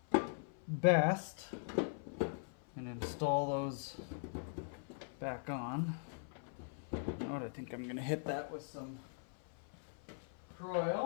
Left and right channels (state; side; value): silent; right; 50 dB below the other